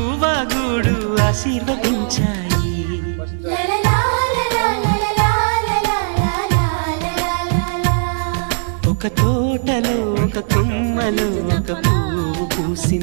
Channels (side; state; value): left; silent; digital silence